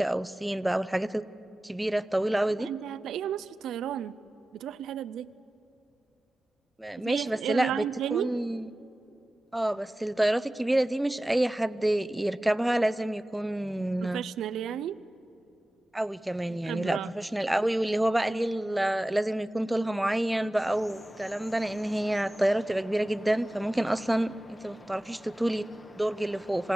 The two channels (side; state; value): both; normal; correlation 0.96